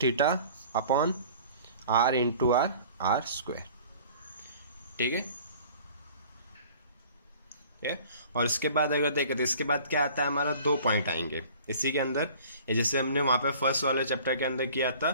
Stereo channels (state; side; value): inverted; both; correlation -0.48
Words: theta upon R into R square. ठीक है, और इसके बाद अगर देखें तो इसके बाद क्या आता है, हमारा दो पॉइंट आएंगे इसी के अंदर। जैसे हमने वहाँ पे फर्स्ट वाले चैप्टर के अंदर किया था,